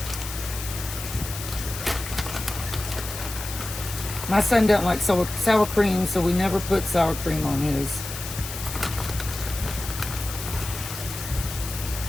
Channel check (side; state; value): left; noise; hiss, 9 dB below the sound